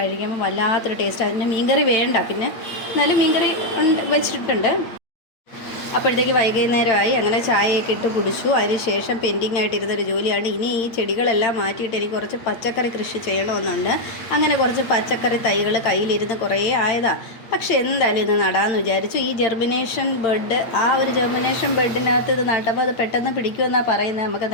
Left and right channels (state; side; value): late; right; 8.6 ms